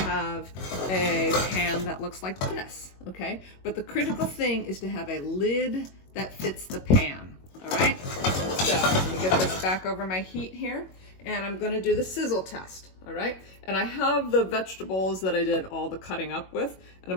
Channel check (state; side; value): late; right; 21 ms